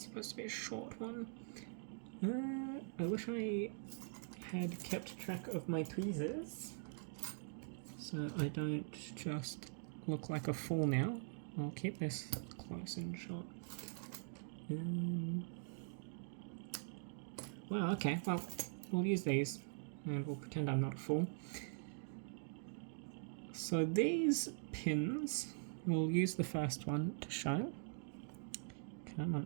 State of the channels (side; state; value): left; silent; digital silence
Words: supposed to be a short one. I wish I had kept track of my tweezers, so I don't just look like a fool now. I'll keep this close and short. Well, okay, well, we'll use these and we'll pretend I'm not a fool. So these pins, we'll use the first one to show. Come on,